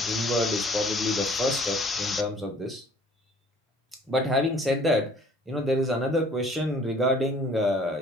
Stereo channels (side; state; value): both; normal; correlation 0.54